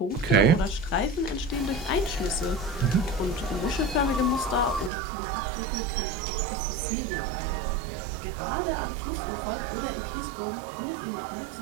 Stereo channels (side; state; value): left; drops out; at 4.9 s